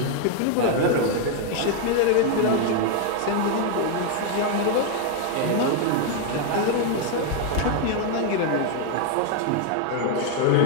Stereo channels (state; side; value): different; both; correlation 0.00